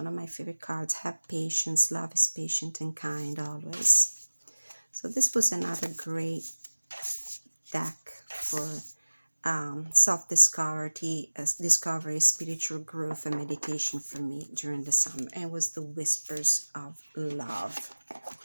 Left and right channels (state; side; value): inverted; both; correlation -1.00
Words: of my favorite cards. Have patience. Love is patient and kind always. So this was another great deck for self-discovery, discovery, spiritual growth, and meditation for me during the summer. And it was the Whispers of Love